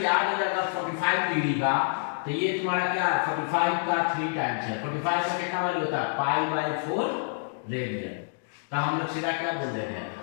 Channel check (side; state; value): right; silent; digital silence